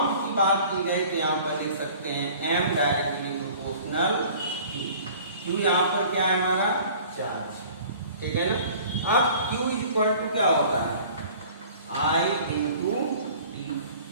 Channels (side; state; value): both; inverted; correlation -0.48